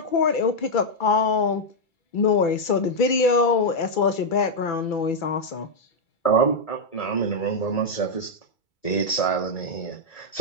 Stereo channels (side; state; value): right; late; 2.3 ms